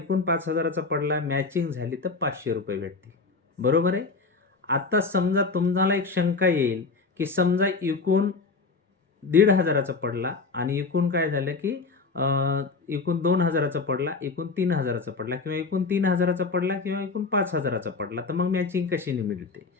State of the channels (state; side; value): quieter; right; 4.2 dB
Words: 5,000चा पडला, मॅचिंग झाली तर 500 रुपये भेटतील. बरोबर आहे. आता समजा तुम्हाला एक शंका येईल, की समजा एकूण 1,500चा पडला आणि एकूण काय झालं, की एकूण 2,000चा पडला, एकूण 3,000चा पडला किंवा एकूण 3,000चा पडला किंवा एकूण 5,000चा पडला, तर मग मॅचिंग कशी मिळते?